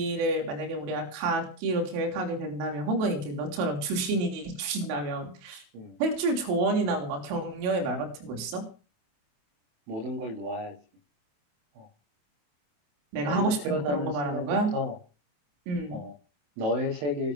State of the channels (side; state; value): left; late; 28 ms